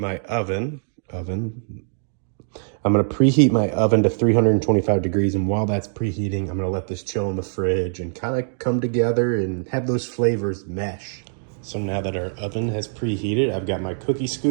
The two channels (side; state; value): left; silent; digital silence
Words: oven. I'm gonna preheat my oven to 325 degrees, and while that's preheating, I'm gonna let this chill in the fridge and kind of come together and have those flavors mesh. So now that our oven has preheated, I've got my cookie